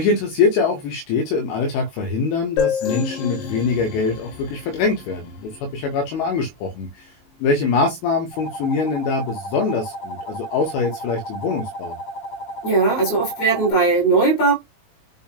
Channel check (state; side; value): late; right; 19 ms